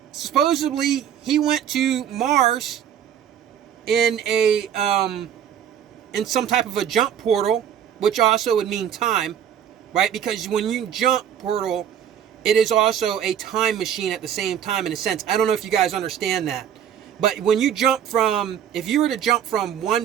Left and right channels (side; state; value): left; quieter; 9.3 dB